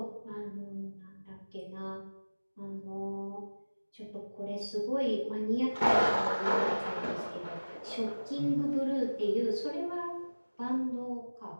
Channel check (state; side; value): inverted; both; correlation -1.00